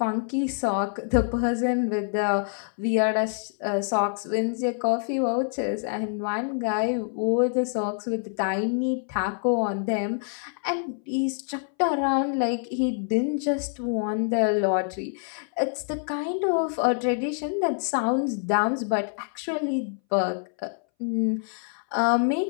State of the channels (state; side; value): silent; right; 61 dB below the other